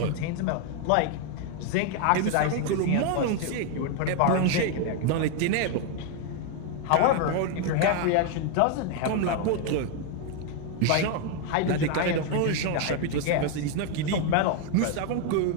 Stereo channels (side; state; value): both; different; correlation 0.01